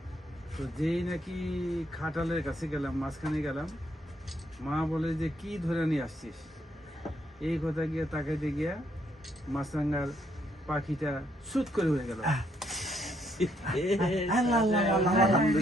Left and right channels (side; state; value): both; normal; correlation 0.72